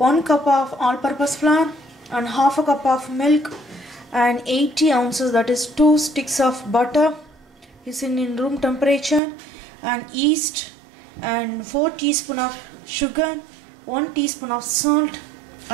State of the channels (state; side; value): drops out; left; at 9.2 s